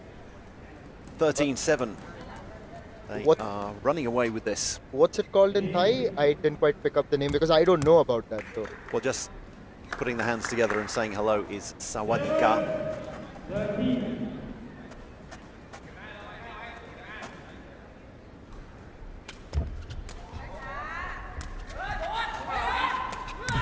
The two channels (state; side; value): identical; both; correlation 1.00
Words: 13-7. They are running away with this. What's it called in Thai? I didn't quite pick up the name because I don't know about that though. Well, just putting the hands together and saying hello is Sawadika.